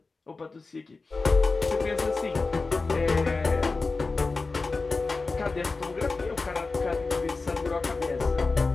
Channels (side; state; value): right; quieter; 3.9 dB